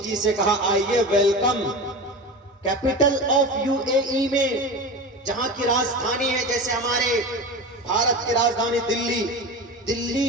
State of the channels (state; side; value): normal; both; correlation 0.28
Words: سے کہا آئیے ویلکم. کیپٹل آف UAE میں، جہاں کی راجدھانی ہے، جیسے ہمارے بھارت کی راجدھانی